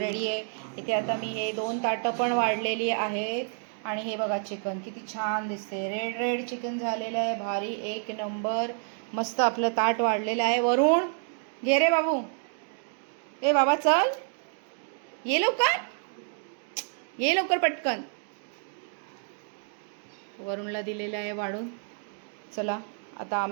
आहे. इथे आता मी हे 2 ताटं पण वाढलेली आहेत. आणि हे बघा चिकन किती छान दिसते, रेड चिकन झालेलं आहे. भारी, एक नंबर. मस्त आपलं ताट वाढलेलं आहे. वरून घे रे बाबू. ए बाबा चल, ये लवकर पटकन. वरूनला दिलेलं आहे वाढून. चला आता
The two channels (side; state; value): left; silent; 59 dB below the other